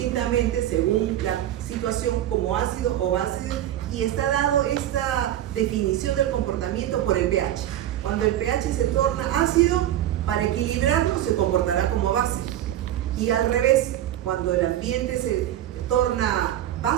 según la situación como ácido o base, y está dado esta definición del comportamiento por el pH. Cuando el pH se torna ácido, para equilibrarlo se comportará como base, y al revés, cuando el ambiente se torna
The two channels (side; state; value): left; quieter; 12.4 dB